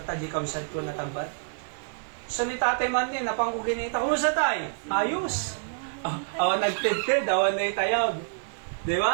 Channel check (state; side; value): silent; left; 60 dB below the other